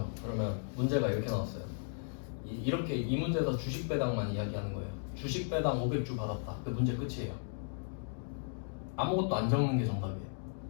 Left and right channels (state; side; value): silent; right; digital silence